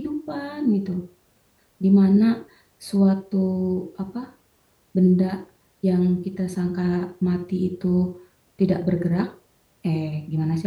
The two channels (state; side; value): identical; both; correlation 1.00